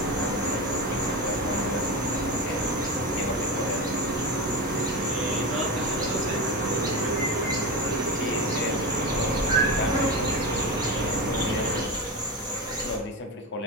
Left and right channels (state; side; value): normal; both; correlation 0.20